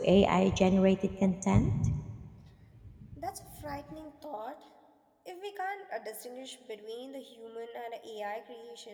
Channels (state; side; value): identical; both; correlation 1.00